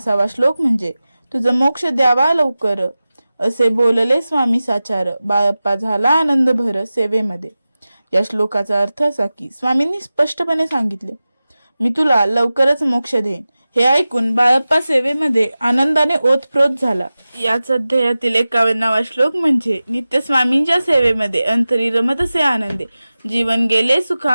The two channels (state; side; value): inverted; both; correlation -0.96